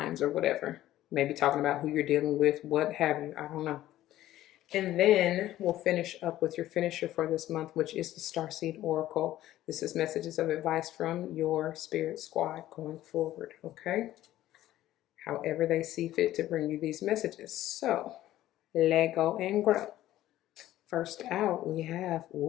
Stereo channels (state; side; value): quieter; right; 14.1 dB